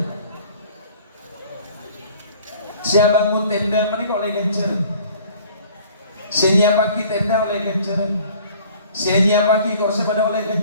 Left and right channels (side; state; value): both; inverted; correlation -0.51